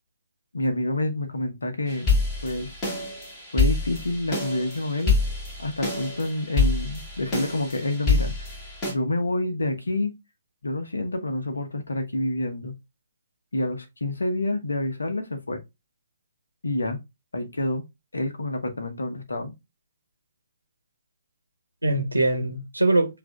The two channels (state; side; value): inverted; both; correlation -0.44